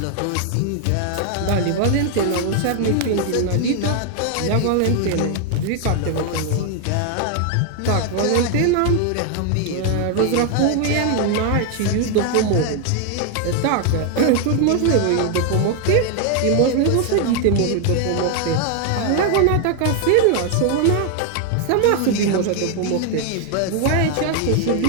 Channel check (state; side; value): different; both; correlation 0.00